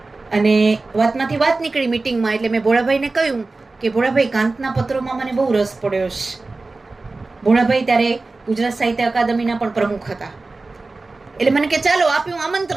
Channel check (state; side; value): quieter; left; 3.5 dB